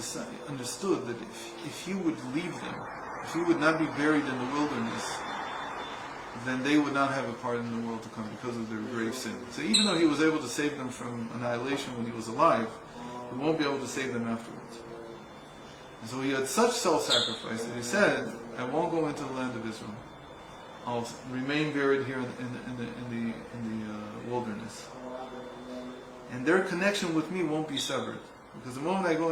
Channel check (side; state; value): both; identical; correlation 1.00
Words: understood that if he would leave them, if he would not be buried in the wilderness, then they would not have a part in the world to come because of their grave sin. So even though he was able to save them from annihilation when he was alive, he won't be able to save them afterwards. And so he had such self-sacrifice that he said, I won't go into the land of Israel. I'll remain buried here in the wilderness. And their connection with me won't be severed. Because the moment I go